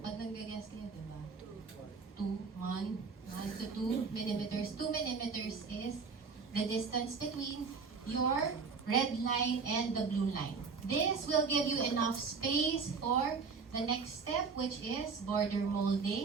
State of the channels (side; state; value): left; quieter; 5.1 dB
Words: nag-guess kayo, di ba? 1 to 2 millimeters. 2 millimeters is the distance between your red line and the blue line. This will give you enough space for the next step, which is border